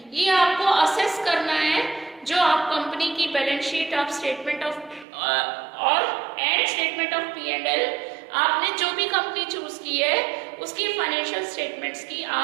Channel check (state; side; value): drops out; left; at 5.1 s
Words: ये आपको असेस करना है। जो आप कंपनी की balance sheet of statement of और एंड स्टेटमेंट ऑफ P&L, आपने जो भी कंपनी चूज की है उसकी फाइनेंशियल स्टेटमेंट्स की